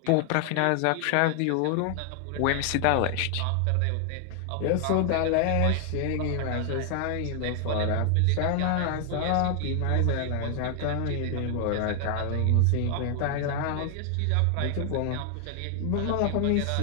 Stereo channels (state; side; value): different; both; correlation 0.00